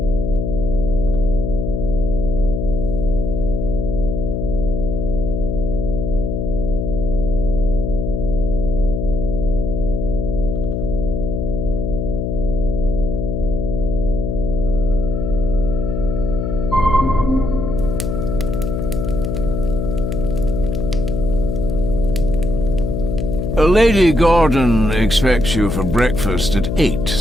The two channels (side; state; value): left; noise; hum, 2 dB below the sound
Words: Lady Gordon expects you for breakfast at 8,